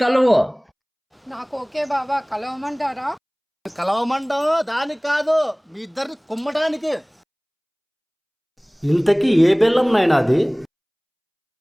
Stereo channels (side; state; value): both; identical; correlation 1.00